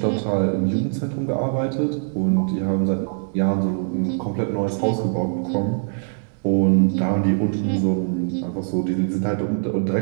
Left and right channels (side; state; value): left; silent; digital silence